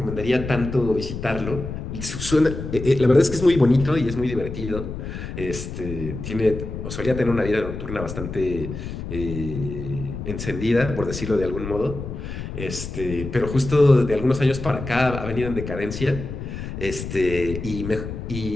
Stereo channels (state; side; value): noise; left; rumble, 7 dB below the sound